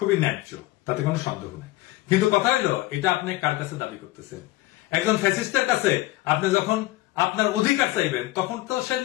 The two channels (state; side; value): quieter; right; 18.2 dB